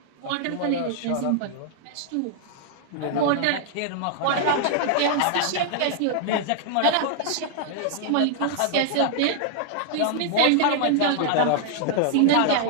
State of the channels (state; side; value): different; both; correlation -0.01